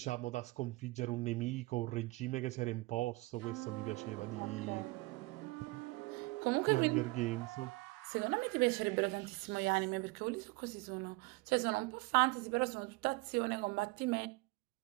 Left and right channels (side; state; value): left; quieter; 22.9 dB